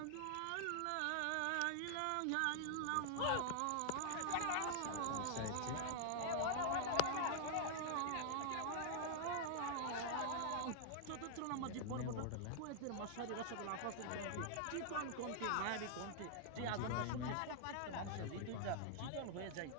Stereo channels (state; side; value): different; both; correlation -0.01